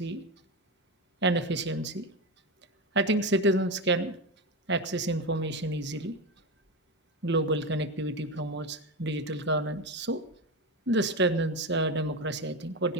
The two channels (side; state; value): both; normal; correlation 0.16